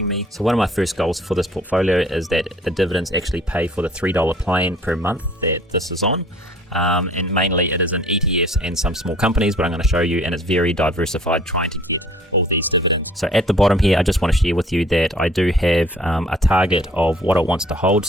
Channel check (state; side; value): normal; both; correlation 0.54